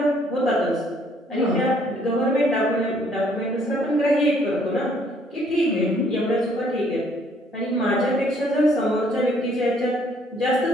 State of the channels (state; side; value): normal; both; correlation 0.64